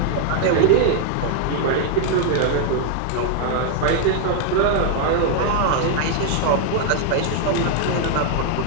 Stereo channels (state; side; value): different; both; correlation 0.00